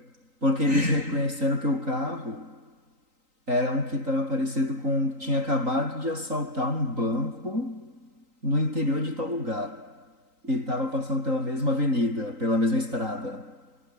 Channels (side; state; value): left; late; 3.9 ms